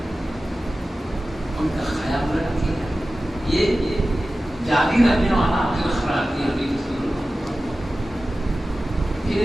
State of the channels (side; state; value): both; normal; correlation 0.95